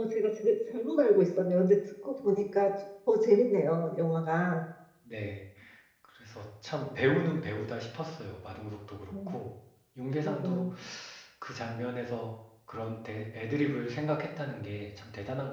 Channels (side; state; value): both; identical; correlation 1.00